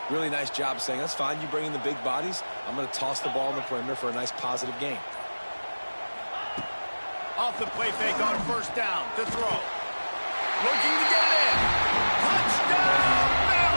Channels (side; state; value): both; inverted; correlation -1.00